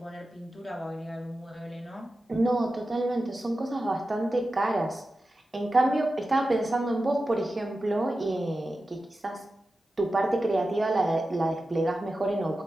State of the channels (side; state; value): both; normal; correlation 0.93